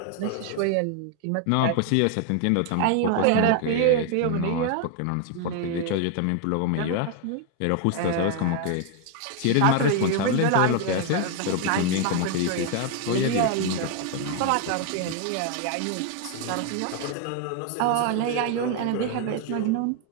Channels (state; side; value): different; both; correlation 0.00